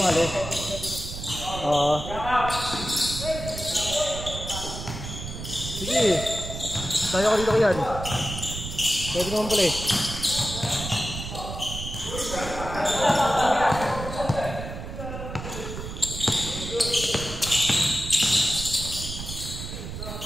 Sige. Tayo ka dito yan. Pwede naman pala eh.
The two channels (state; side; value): noise; right; rumble, 8 dB below the sound